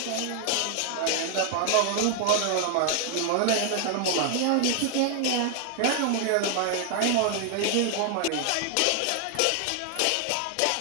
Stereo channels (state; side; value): different; both; correlation 0.00